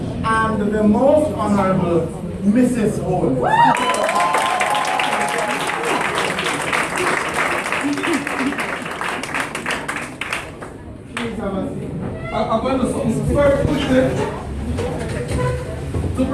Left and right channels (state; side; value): identical; both; correlation 1.00